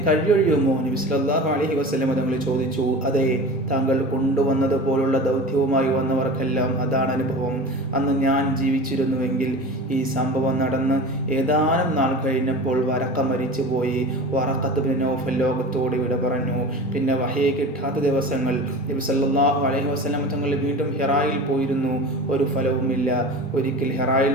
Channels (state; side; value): normal; both; correlation 0.33